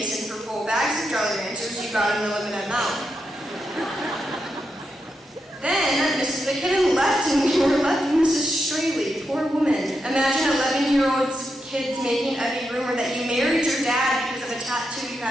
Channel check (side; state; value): both; normal; correlation 0.85